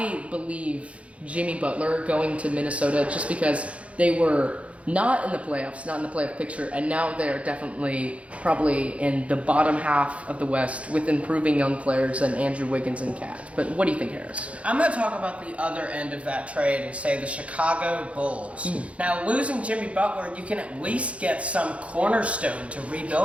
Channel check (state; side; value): late; left; 0.063 ms